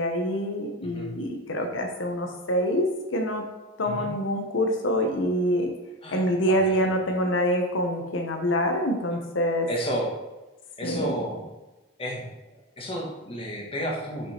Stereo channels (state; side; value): normal; both; correlation 0.18